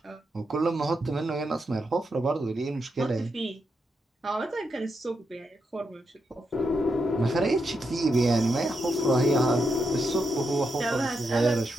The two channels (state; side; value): normal; both; correlation 0.83